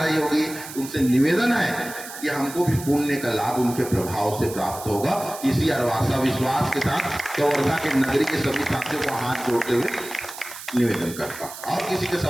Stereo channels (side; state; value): right; noise; hiss, 13 dB below the sound